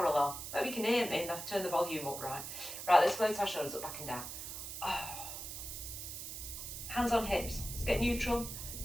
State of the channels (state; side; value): noise; right; hiss, 7 dB below the sound